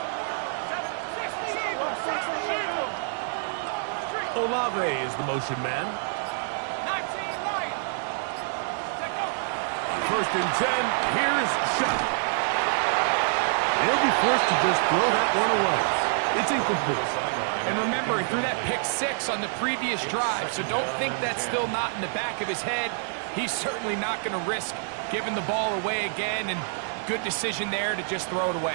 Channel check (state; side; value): silent; left; 60 dB below the other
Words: Olave is the motion man. On 1st and 10, here's Shuck. He'll be forced to just throw that one away. It's incomplete. And remember, he threw that pick 6 on the previous drive, so don't think that's still not in the back of his head. He's certainly not going to risk giving the ball away again, and good decision there to just throw it